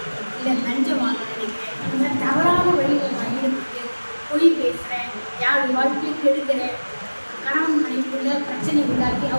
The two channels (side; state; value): both; inverted; correlation -1.00